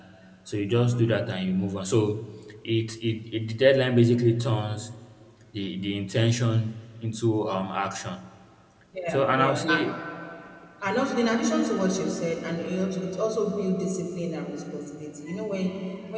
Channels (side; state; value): both; identical; correlation 1.00